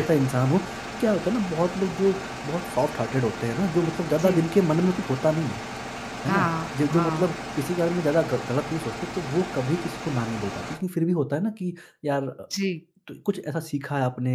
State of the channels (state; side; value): identical; both; correlation 1.00